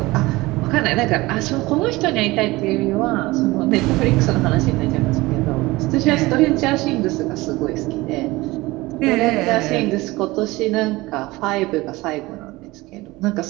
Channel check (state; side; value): quieter; left; 20.6 dB